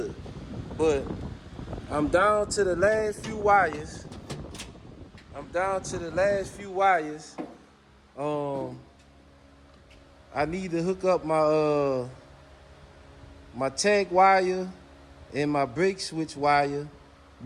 But I'm down to the last few wires. I need to hook up my tag wire and my brake switch wire,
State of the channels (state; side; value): identical; both; correlation 1.00